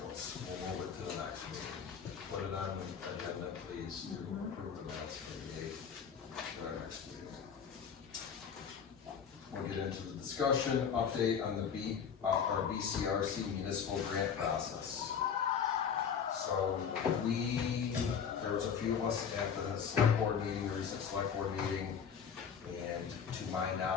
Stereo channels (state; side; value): quieter; right; 7.1 dB